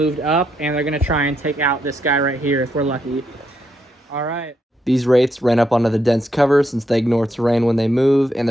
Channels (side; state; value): both; normal; correlation 0.78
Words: up. And they're going to try and take out this guy right here if we're lucky. All right. These Wraiths ran up onto the dense cover since they ignore terrain when they move, and